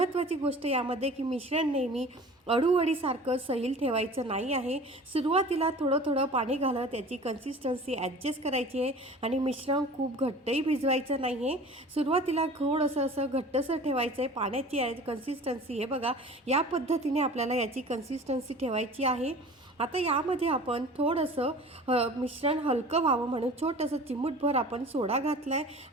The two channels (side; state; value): both; normal; correlation 0.42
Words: गोष्ट यामध्ये की मिश्रण नेहमी अळूवडीसारखं सैल ठेवायचं नाही आहे। सुरुवातीला थोडं थोडं पाणी घालत याची कन्सिस्टन्सी ॲडजस्ट करायची आहे आणि मिश्रण खूप घट्टही भिजवायचं नाही आहे। सुरुवातीला थोडंसं असं घट्टसर ठेवायचं आहे पाण्याची कन्सिस्टन्सी। हे बघा, या पद्धतीने आपल्याला याची कन्सिस्टन्सी ठेवायची आहे। आता यामध्ये आपण थोडंसं मिश्रण हलकं व्हावं म्हणून छोटंसं चिमूटभर आपण सोडा घातला आहे।